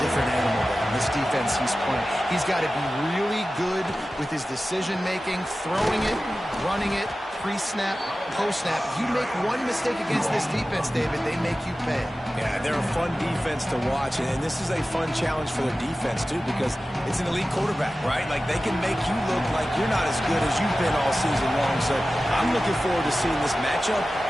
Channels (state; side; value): normal; both; correlation 0.95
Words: animal than this defense he's playing. He's got to be really good with his decision-making, throwing it, running it, pre-snap, post-snap. If you make one mistake against this defense, David, they make you pay. Yeah, they're a fun defense to watch, and this is a fun challenge for their defense, too, because it's an elite quarterback, right? Like, they can make you look like you're not as good as you've been all season long, so I'm looking forward to seeing this matchup